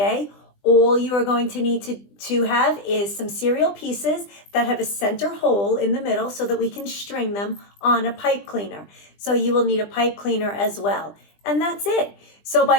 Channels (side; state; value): right; late; 20 ms